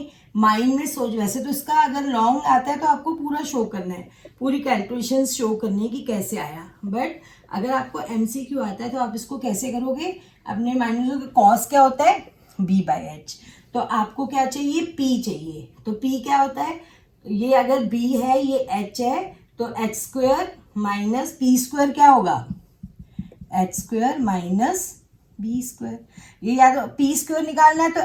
माइंड में सोच, वैसे तो इसका अगर लॉन्ग आता है तो आपको पूरा शो करना है, पूरी कैलकुलेशन शो करनी है कि कैसे आया. बट अगर आपको MCQ आता है तो आप इसको कैसे करोगे? अपने माइंड में सोचोगे कॉस क्या होता है? b/h. तो आपको क्या चाहिए? p चाहिए. तो p क्या होता है? ये अगर b है, ये h है, तो h² माइनस p² क्या होगा? h² minus b². ये या तो p² निकालना है तो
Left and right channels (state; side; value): identical; both; correlation 1.00